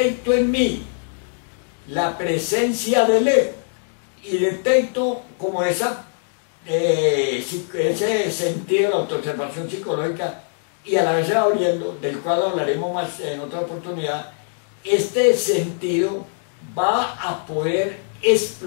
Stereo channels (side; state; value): right; silent; digital silence